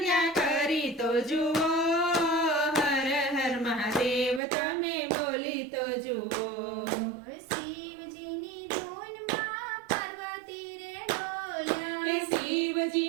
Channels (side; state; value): left; drops out; at 4.4 s